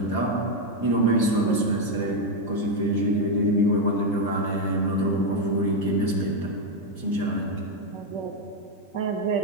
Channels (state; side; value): late; right; 5.4 ms